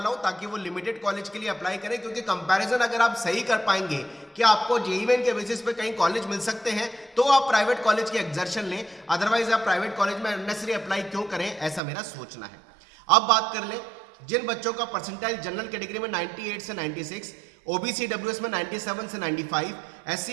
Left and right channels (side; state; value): left; drops out; at 11.8 s